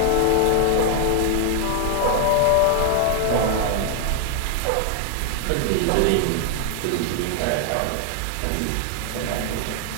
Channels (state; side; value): different; both; correlation 0.00